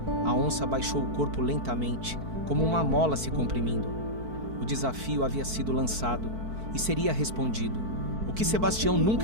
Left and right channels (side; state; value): left; late; 4.5 ms